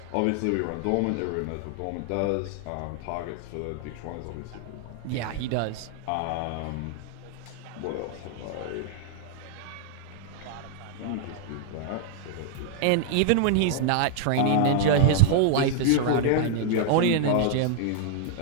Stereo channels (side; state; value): both; different; correlation -0.01